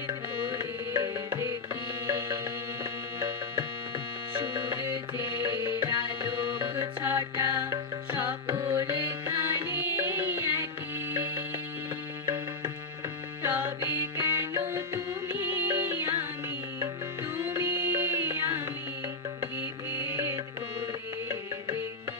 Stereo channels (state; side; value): quieter; right; 3.7 dB